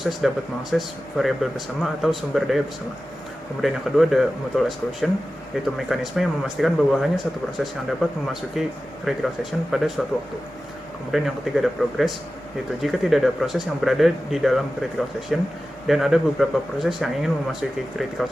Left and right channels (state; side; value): normal; both; correlation 0.94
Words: dapat mengakses variabel bersama atau sumber daya bersama. Kemudian yang kedua ada mutual exclusion, yaitu mekanisme yang memastikan bahwa hanya satu proses yang dapat memasuki critical section pada suatu waktu. Kemudian yang ketiga ada progress, yaitu jika tidak ada proses yang berada di dalam critical section dan ada beberapa proses yang ingin memasuki critical